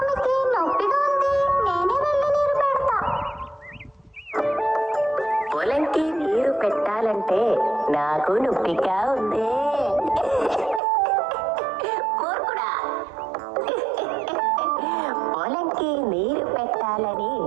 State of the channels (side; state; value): left; drops out; at 10.8 s